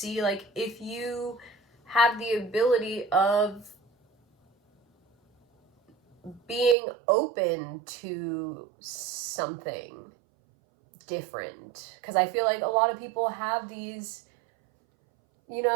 like if you have the ability of being open to something different. Because I feel like a lot of people have these,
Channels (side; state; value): left; drops out; at 6.8 s